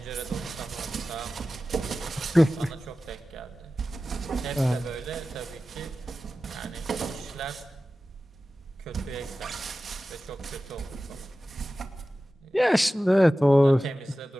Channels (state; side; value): normal; both; correlation 0.95